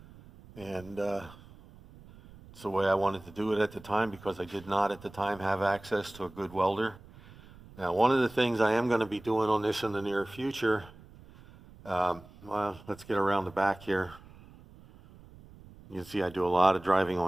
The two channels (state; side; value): noise; right; rumble, 21 dB below the sound